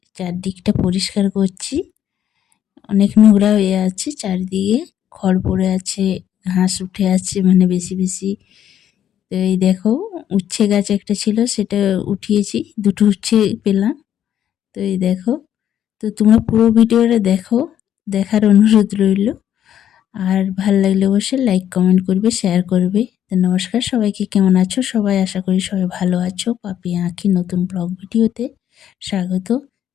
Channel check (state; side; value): quieter; right; 10.3 dB